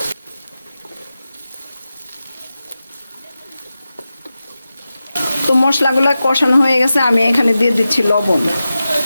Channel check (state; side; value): inverted; both; correlation -0.93